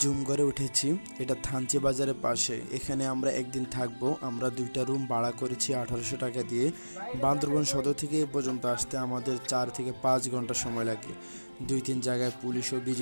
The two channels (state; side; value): inverted; both; correlation -1.00